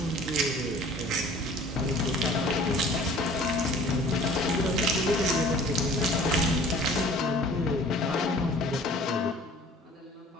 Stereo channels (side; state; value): both; normal; correlation 0.49